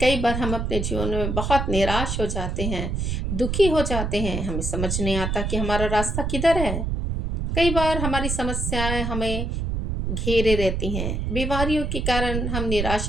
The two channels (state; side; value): noise; right; rumble, 1 dB below the sound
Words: बार हम अपने जीवन में बहुत निराश हो जाते हैं, दुखी हो जाते हैं। हमें समझ नहीं आता कि हमारा रास्ता किधर है। कई बार हमारी समस्याएं हमें घेरे रहती हैं, बीमारियों के कारण हम